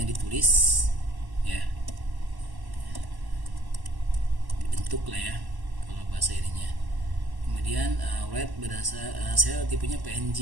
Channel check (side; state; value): left; late; 1.1 ms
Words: ditulis ya, bentuk lah ya kalau bahasa ininya. Kemudian write berdasar saya tipenya